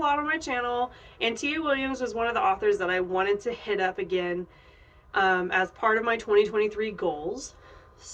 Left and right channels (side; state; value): both; identical; correlation 1.00